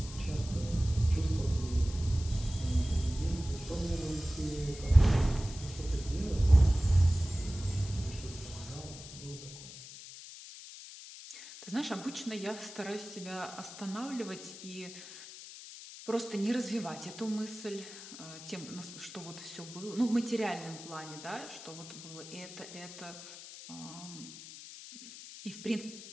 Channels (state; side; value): noise; left; hiss, 14 dB below the sound